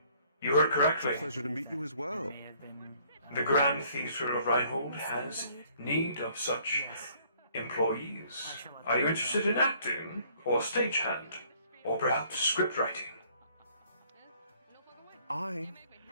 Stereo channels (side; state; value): both; inverted; correlation -0.61